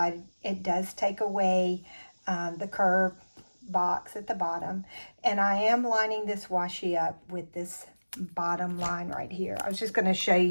It does take away the curved box at the bottom, and I am lining this washi up with this bottom line right here. I was just going to show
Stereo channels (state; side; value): inverted; both; correlation -1.00